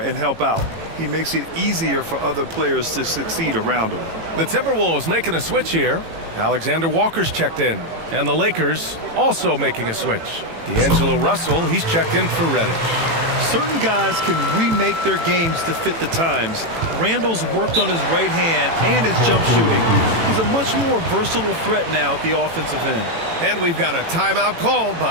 help out. He makes it easier for other players to succeed around him. The Timberwolves making a switch here. Alexander Walker's checked in. And the Lakers also making a switch. D'Angelo Russell, he's checked in for Reddish. Certain guys can remake their games to fit the times. Randall's worked on his right hand and his jump shooting. He's a much more versatile threat now at the offensive end. And we've got a timeout called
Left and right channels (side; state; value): left; late; 18 ms